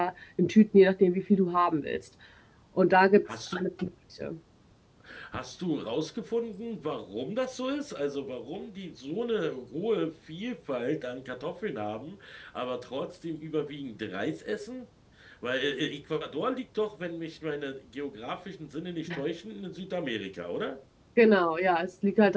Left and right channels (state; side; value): identical; both; correlation 1.00